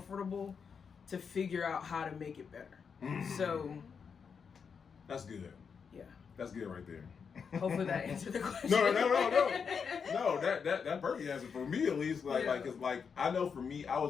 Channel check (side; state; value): right; quieter; 6.2 dB